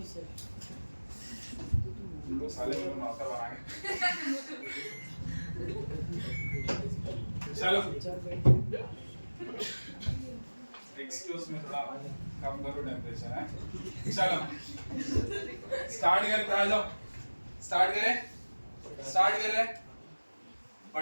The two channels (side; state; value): both; inverted; correlation -1.00